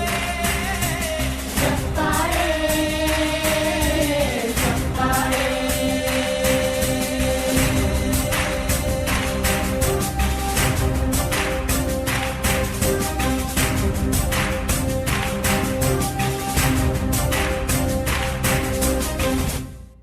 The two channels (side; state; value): both; identical; correlation 1.00